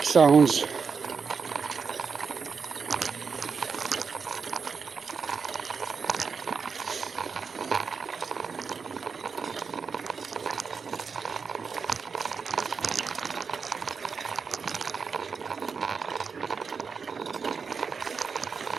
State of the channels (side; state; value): left; quieter; 5.5 dB